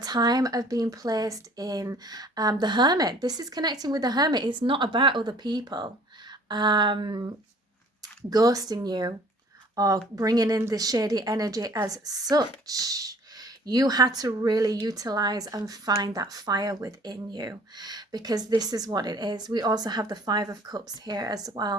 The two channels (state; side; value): normal; both; correlation 0.53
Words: of being placed in the Hermit. This is connecting with the Hermit. It's not about other people ghosting you or bringing in the shady energy as such. You had to really utilize and find that fire within you, because this is what it is. We also have the 5 of Cups here as